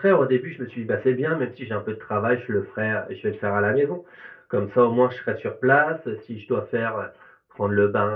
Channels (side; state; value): both; identical; correlation 1.00